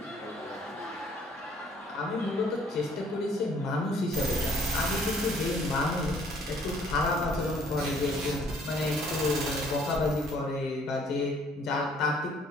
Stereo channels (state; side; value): normal; both; correlation 0.61